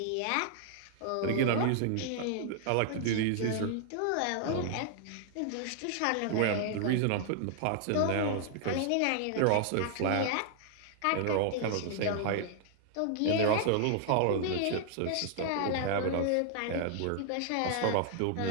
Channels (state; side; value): different; both; correlation -0.01